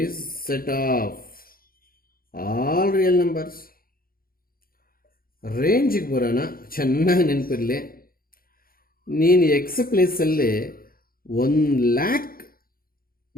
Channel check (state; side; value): late; right; 0.42 ms